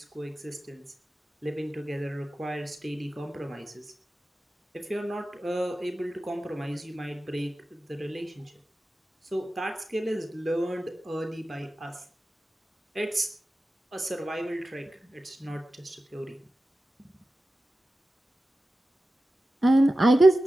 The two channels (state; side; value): normal; both; correlation 0.94